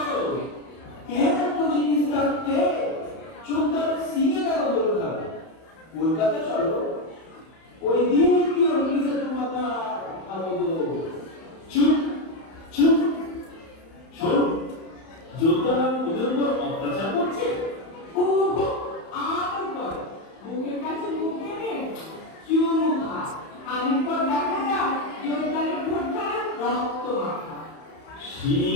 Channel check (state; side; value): late; right; 31 ms